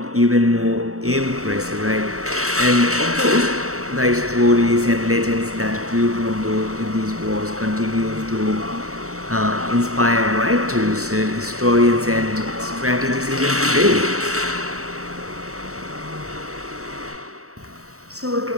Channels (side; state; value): left; late; 0.64 ms